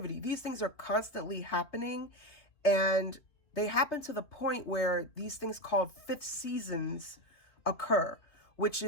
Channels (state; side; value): late; right; 3.2 ms